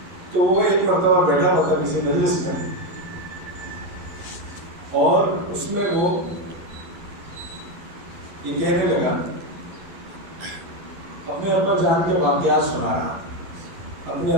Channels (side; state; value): left; late; 11 ms